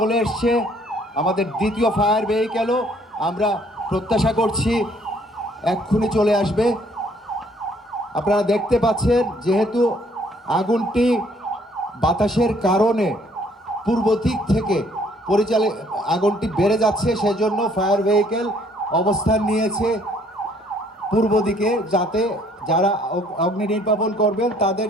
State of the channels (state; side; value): normal; both; correlation 0.62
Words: এসছে, আমাদের দ্বিতীয় ফায়ার ভেহিকেলও আমরা প্রত্যাশা করছি এক্ষুনি চলে আসবে। আপনারা দেখতে পাচ্ছেন, যেহেতু আগুনটি বাতাসের কারণে পূর্ব দিক থেকে আগুনটি বেড়ে যাচ্ছে, সেজন্য ফায়ার ভেহিকেল অবস্থান নিয়েছে পূর্ব দিকে, যাতে যারা অগ্নি নির্বাপন করবেন তাদের